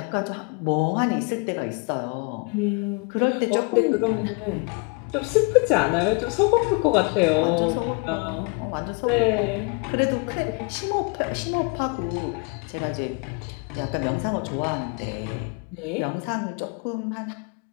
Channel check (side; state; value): right; quieter; 32.5 dB